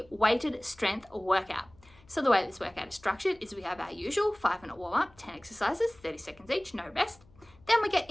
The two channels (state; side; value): noise; left; hum, 27 dB below the sound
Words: weighted strength workout. So the way this workout is structured is we have our usual 5-minute warm-up, 10 exercises, 30 seconds each, no rest. Then we get